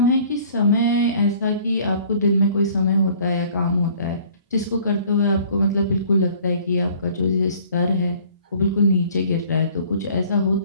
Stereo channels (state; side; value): inverted; both; correlation -0.53